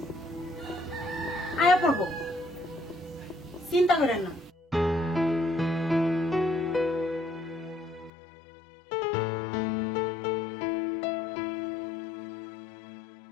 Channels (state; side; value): drops out; right; at 8.1 s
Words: আয়া পড়বো, চিন্তা করেন না।